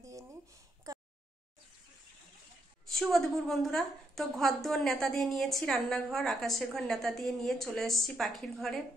দিয়ে নিই। শুভ দুপুর বন্ধুরা। তো ঘর দুয়ার নেতা দিয়ে নিয়েছি, রান্নাঘর আকাশের ঘর নেতা দিয়ে নিয়ে চলে এসেছি পাখির ঘরে,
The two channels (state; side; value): normal; both; correlation 0.78